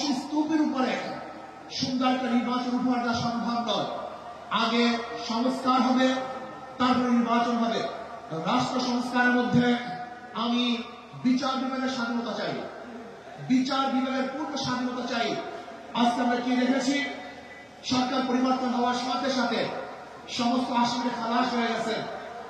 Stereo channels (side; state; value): both; identical; correlation 1.00